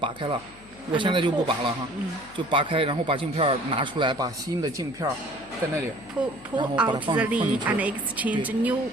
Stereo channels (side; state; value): left; noise; hum, 23 dB below the sound